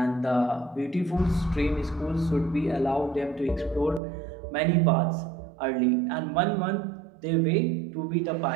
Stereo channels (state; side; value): drops out; left; at 4.0 s